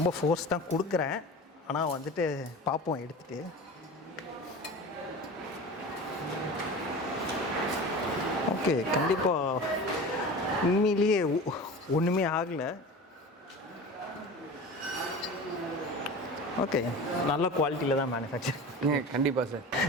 ஃபோர்ஸ் தான் கொடுக்குறேன், ஆனால் வந்துட்டு பார்ப்போம் எடுத்துகிட்டு. ஓகே, கண்டிப்பாக உண்மையிலேயே ஒன்றுமே ஆகலை. ஓகே, நல்ல குவாலிட்டியில் தான் மேனுஃபேக்சர். கண்டிப்பாக சார்.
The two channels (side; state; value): both; normal; correlation 0.34